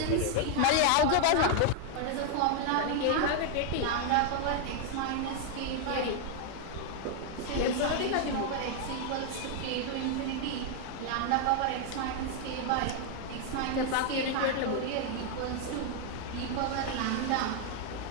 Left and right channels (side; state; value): both; different; correlation 0.00